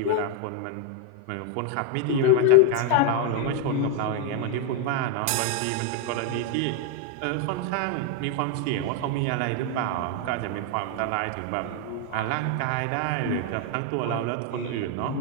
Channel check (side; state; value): both; different; correlation 0.01